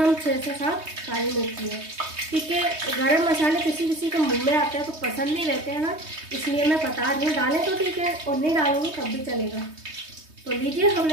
6 से 7 काली मिर्ची है। ठीक है, गरम मसाले किसी किसी के मुंह में आते हैं तो पसंद नहीं रहते हैं ना, इसलिए मैं बता रही हूँ। डालें तो ठीक है और नहीं डालूंगी तब भी चलेगा। तो लीजिए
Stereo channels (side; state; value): left; late; 3.2 ms